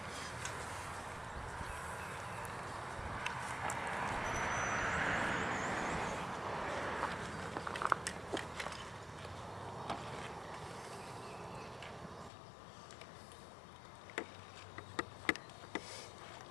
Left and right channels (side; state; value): right; drops out; at 12.3 s